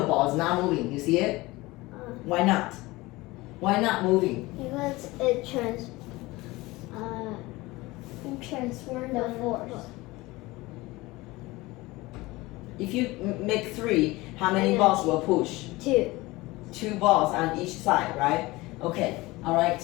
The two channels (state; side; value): quieter; right; 20.9 dB